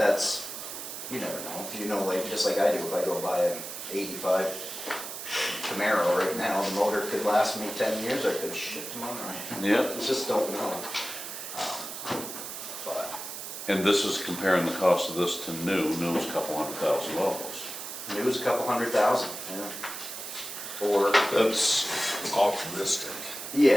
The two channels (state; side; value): noise; right; hiss, 8 dB below the sound